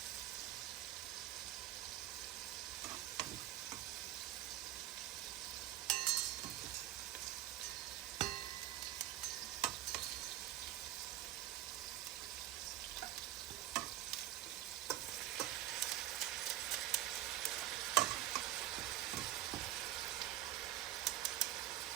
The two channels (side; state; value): left; quieter; 14.1 dB